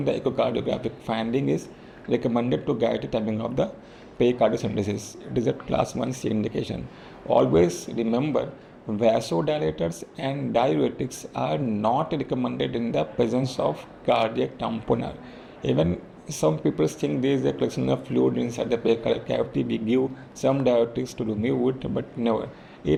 the echocardiographic finding, is recommended to guide the timing of the pericardial synthesis. It is a class 1C indication. Always remember, vasodilators and diuretics are not recommended in the presence of cardiac tamponade. Even some people think there is a collection of fluid inside the pericardial cavity. We give some diuretics to remove it, but never.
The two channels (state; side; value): identical; both; correlation 1.00